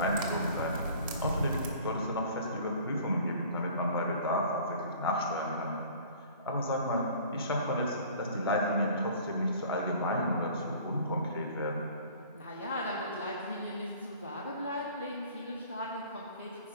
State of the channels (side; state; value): both; inverted; correlation -0.48